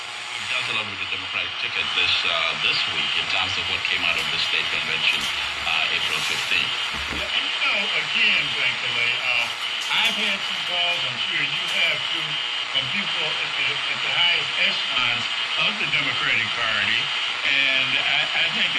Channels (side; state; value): both; identical; correlation 1.00